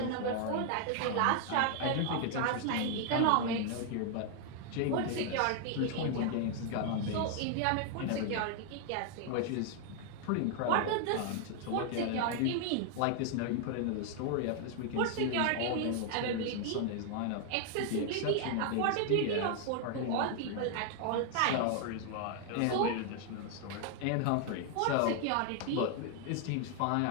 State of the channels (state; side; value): different; both; correlation 0.00